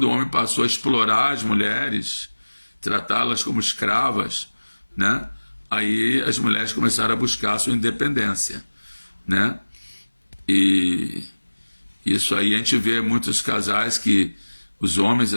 o homem passou a explorar as mulheres, tratá-las como escravas, né? Aí as mulheres começaram a buscar a sua independência, né? E isso aí a gente vê muitos casais que os homens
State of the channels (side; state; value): both; inverted; correlation -1.00